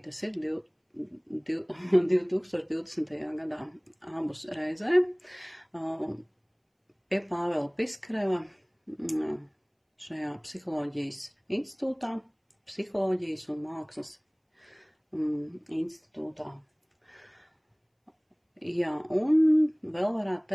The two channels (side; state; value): both; identical; correlation 1.00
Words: tas ir 2020. gadā abus reizē pie Pāvela Piskareva šajā psiholoģijas institūtā, psiholoģijas un mākslas institūtā. Jā, un vēl varētu